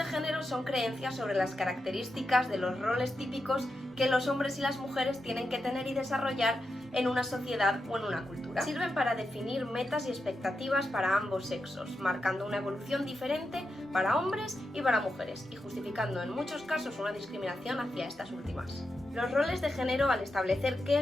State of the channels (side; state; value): both; normal; correlation 0.87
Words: género son creencias sobre las características de los roles típicos que los hombres y las mujeres tienen que tener y desarrollar en una sociedad o en una cultura. Sirven para definir metas y expectativas para ambos sexos, marcando una evolución diferente para hombres y para mujeres y justificando en muchos casos una discriminación hacia estas últimas. Los roles de género, al establecer qué